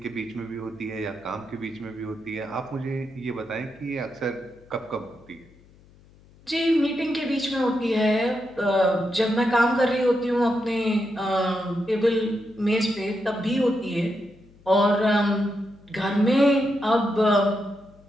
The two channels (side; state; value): left; noise; hum, 27 dB below the sound